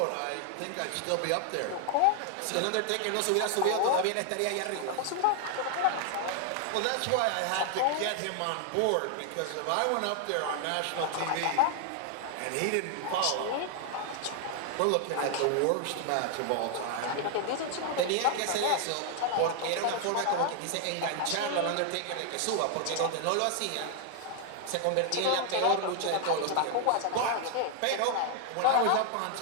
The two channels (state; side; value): different; both; correlation 0.00